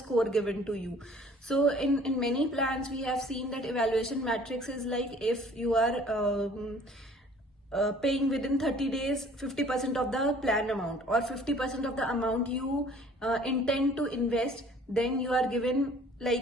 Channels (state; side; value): normal; both; correlation 0.53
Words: given to you. So in many plans we have seen that evaluation matrix is like, if you are paying within 30 days 50% of the plan amount, or 50% of the amount you intend to invest, then you are given